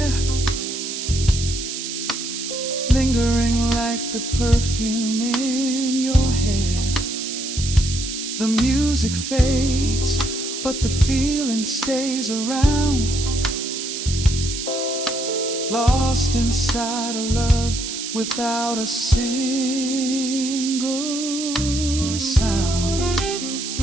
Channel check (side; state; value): right; noise; hiss, 6 dB below the sound